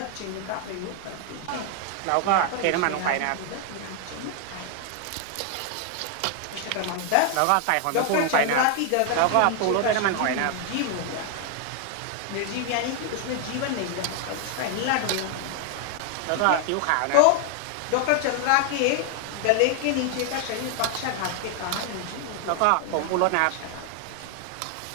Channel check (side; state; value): both; different; correlation 0.00